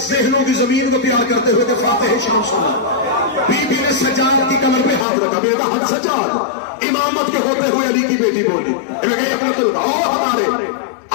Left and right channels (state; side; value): drops out; right; at 5.1 s